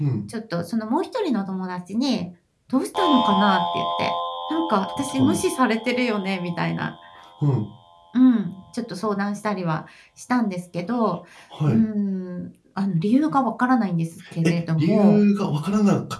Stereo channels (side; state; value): both; identical; correlation 1.00